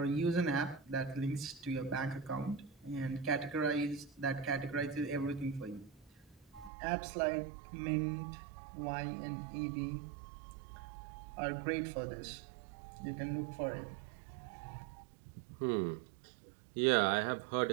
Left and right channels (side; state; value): left; drops out; at 6.7 s